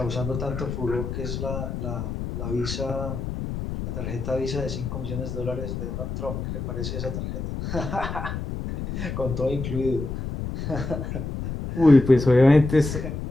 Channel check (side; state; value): left; noise; rumble, 5 dB below the sound